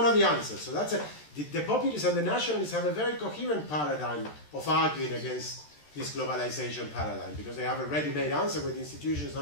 of the answers. So that's the populists and the nationalists have a very coherent paradigm of arguing against this globalization paradigm, because they have a ready-made answer with institutions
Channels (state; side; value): late; right; 13 ms